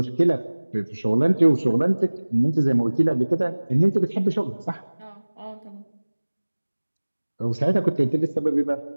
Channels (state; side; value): inverted; both; correlation -1.00